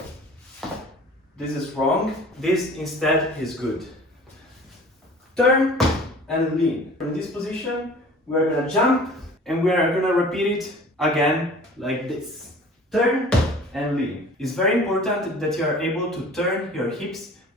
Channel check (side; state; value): both; normal; correlation 0.46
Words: This is wrong. This instead is good. Turn and lean. From this position, we're gonna jump and we're gonna repeat it again like this. Turn and lean. It's very important that you are able to turn your hips